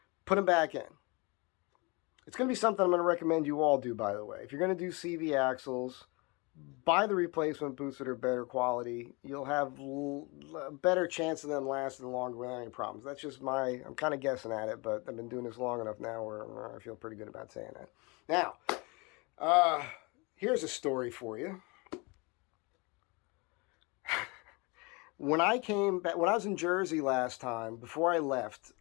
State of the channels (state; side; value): quieter; right; 28.0 dB